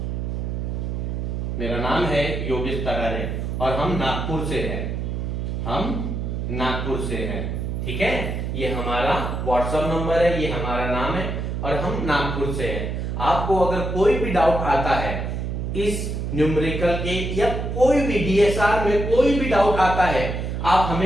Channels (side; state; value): right; noise; hum, 3 dB below the sound